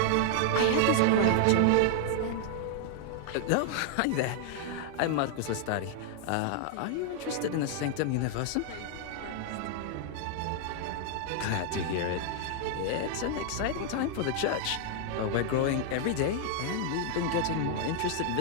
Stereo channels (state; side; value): different; both; correlation 0.00